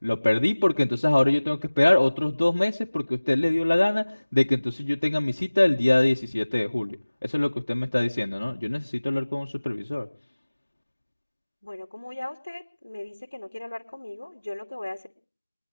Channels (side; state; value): both; inverted; correlation -1.00